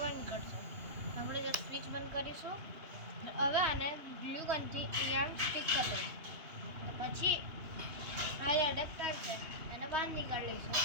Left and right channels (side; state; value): left; late; 2.8 ms